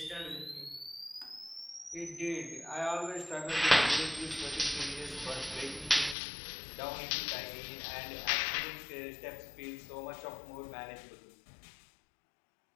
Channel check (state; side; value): drops out; right; at 6.2 s